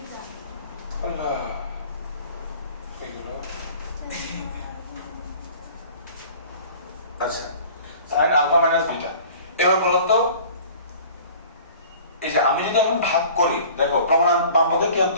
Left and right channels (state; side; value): inverted; both; correlation -0.46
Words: আল্লাহ, আচ্ছা, sin আলফা মাইনাস বিটা। এবার বলো তো, এই যে আমি যদি এখন ভাগ করি, দেখো প্রমাণ বাম পক্ষে কি